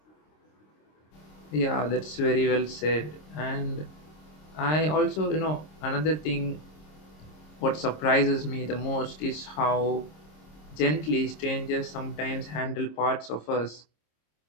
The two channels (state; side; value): late; right; 26 ms